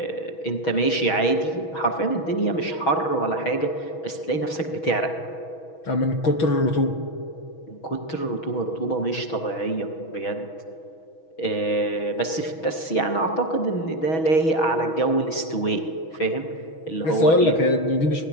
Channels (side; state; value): right; late; 6.2 ms